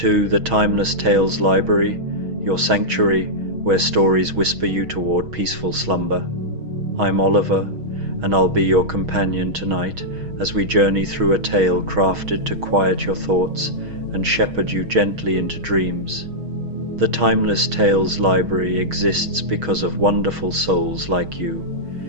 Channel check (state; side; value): late; left; 6.3 ms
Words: the Timeless Tales Library, your sanctuary where stories whisper you toward peaceful slumber. I'm Oliver, and I'll be your companion tonight as we journey through a tale crafted to quiet your thoughts and shepherd you gently into dreams. The Timeless Tales Library exists because of wonderful souls like you.